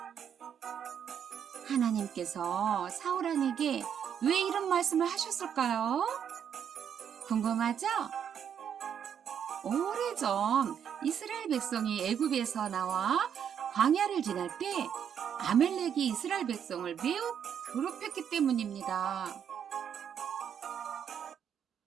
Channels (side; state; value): left; quieter; 8.4 dB